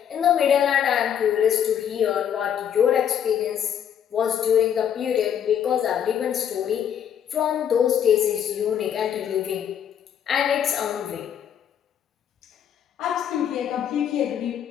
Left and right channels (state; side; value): quieter; right; 9.0 dB